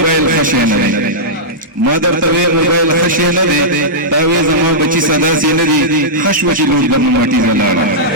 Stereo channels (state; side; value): normal; both; correlation -0.12